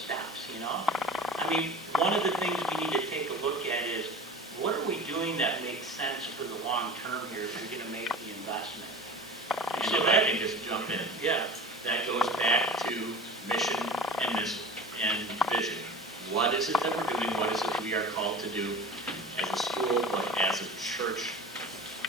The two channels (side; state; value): both; normal; correlation 0.36